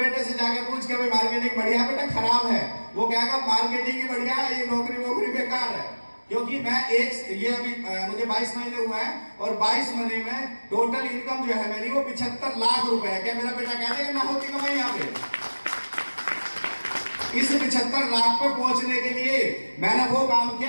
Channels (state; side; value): inverted; both; correlation -1.00